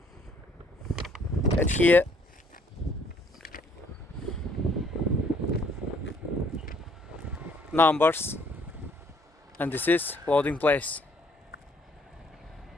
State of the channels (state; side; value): normal; both; correlation 0.63